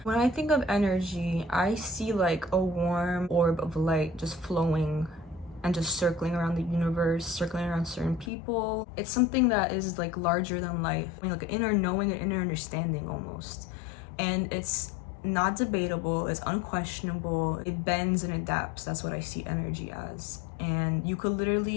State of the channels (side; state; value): right; drops out; at 8.3 s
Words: When I think of energy, I see like a warm orb of light just flowing and just circling around the universe, circling around certain people. It's something that is like larger than life. I mean, like an inner knowing, an inner understanding almost. And it's not debatable, it's unquestionable, it bends and adapts. That's what I see energy as. And you could